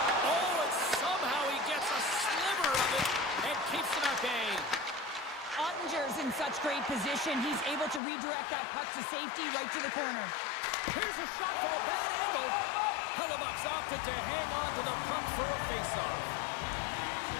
Oh, and somehow he gets a sliver of it and keeps it at bay. Ottinger's in such great position. He's able to redirect that puck to safety right to the corner. Here's a shot for a bad angle. Hellebuck's opted to hang on to the puck for a faceoff.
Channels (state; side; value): drops out; right; at 8.0 s